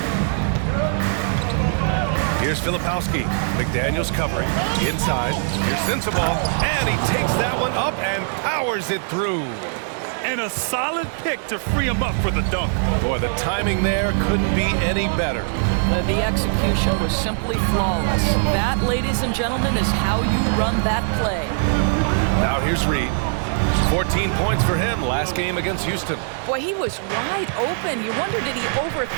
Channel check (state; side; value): silent; left; digital silence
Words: Here's Filipowski. McDaniels covering. Inside. Here's Sensabaugh. And he takes that one up and powers it through. And a solid pick to free him up for the dunk. Boy, the timing there couldn't be any better. The execution was simply flawless. That, ladies and gentlemen, is how you run that play. Now here's Reed. 14 points for him last game against Houston. Boy, he was wide open. You wonder, did he